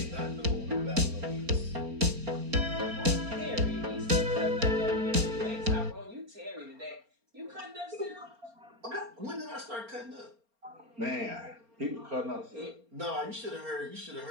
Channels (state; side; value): late; left; 4.3 ms